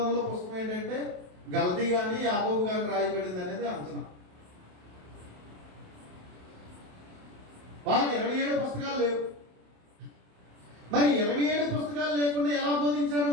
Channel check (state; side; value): late; left; 27 ms